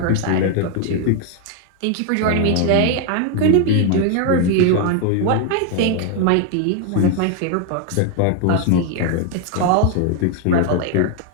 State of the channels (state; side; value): different; both; correlation 0.01